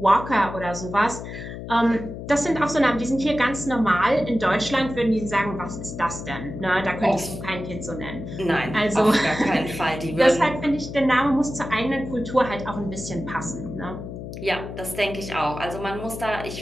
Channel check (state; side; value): noise; left; hum, 9 dB below the sound